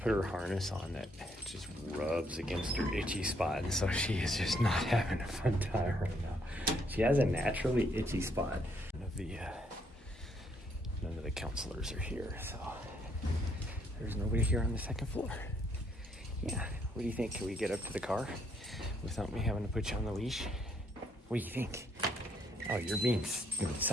her harness on that just rubs against her itchy spot, and so she is just not having a fun time right now. She has a naturally itchy spot. None of the counselors are here, so there's nobody here on the second floor. Yeah, what do you think? Can we get up to the car without me having to put you on the leash? What do you think? Oh, you're doing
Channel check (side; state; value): both; normal; correlation 0.71